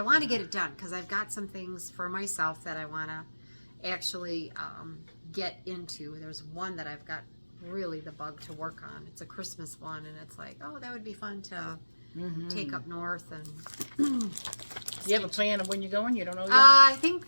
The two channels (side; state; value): both; inverted; correlation -1.00